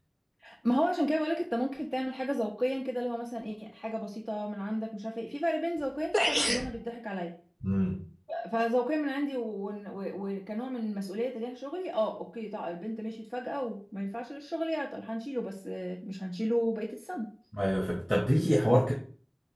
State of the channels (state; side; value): identical; both; correlation 1.00